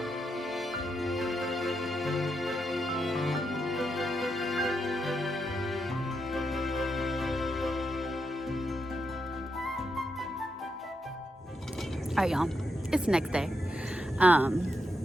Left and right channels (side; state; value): both; normal; correlation 0.83